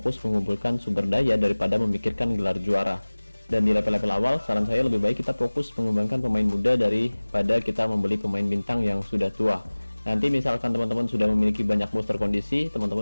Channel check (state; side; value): inverted; both; correlation -1.00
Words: mengumpulkan sumber daya daripada memikirkan gelar juara. Dan di level-level awal saran saya lebih baik kita fokus mengembangkan pemain muda daripada kita membeli pemain bintang yang sudah tua. Nanti misalkan teman-teman sudah memiliki banyak booster kondisi,